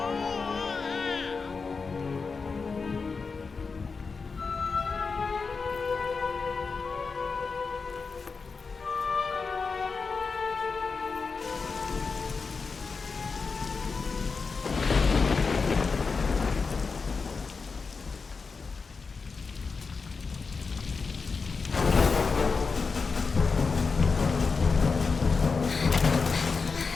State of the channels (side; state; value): right; quieter; 4.7 dB